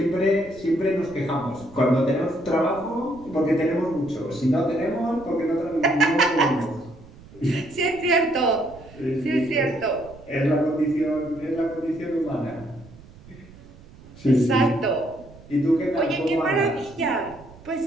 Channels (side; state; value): right; noise; rumble, 21 dB below the sound